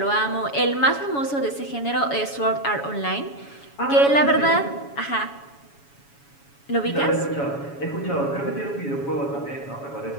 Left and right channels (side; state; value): right; late; 7.1 ms